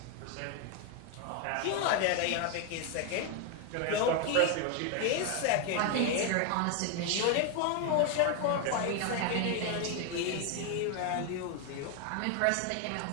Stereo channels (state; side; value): different; both; correlation 0.01